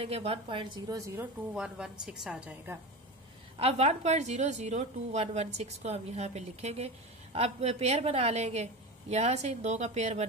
1.002116 आ जाएगा। अब 1.002116 को हम यहाँ पे लिखेंगे। अब पेयर बना लेंगे, यहाँ से इन दो का पेयर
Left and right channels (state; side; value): normal; both; correlation 0.25